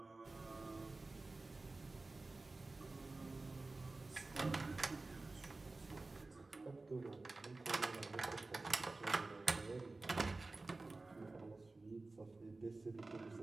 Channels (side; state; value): left; quieter; 3.3 dB